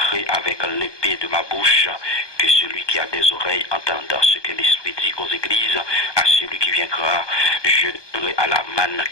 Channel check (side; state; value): right; late; 1.2 ms